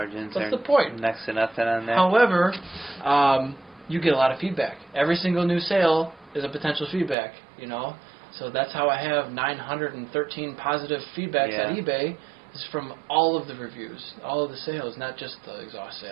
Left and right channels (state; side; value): drops out; left; at 7.2 s